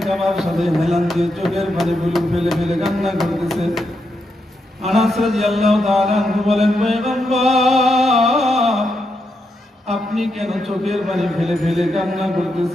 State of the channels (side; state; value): both; normal; correlation 0.83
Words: কাবার সাথে হেলান দিয়ে চোখের পানি ফেলে ফেলে কান্না করতেছে। আনাস রাদিয়াল্লাহু তাআলা আনহু বলেন, পয়গম্বর, আপনি কেন চোখের পানি ফেলে ফেলে কান্না